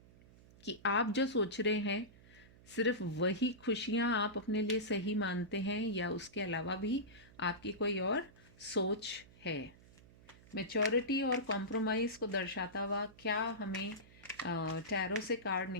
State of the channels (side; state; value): right; noise; hum, 23 dB below the sound